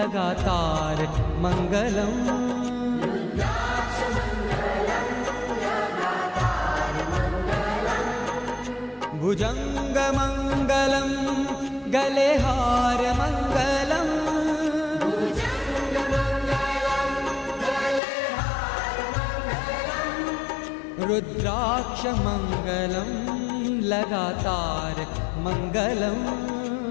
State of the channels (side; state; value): right; drops out; at 18.0 s